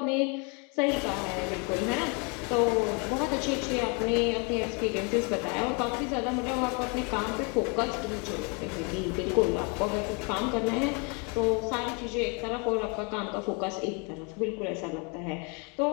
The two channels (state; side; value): quieter; right; 33.6 dB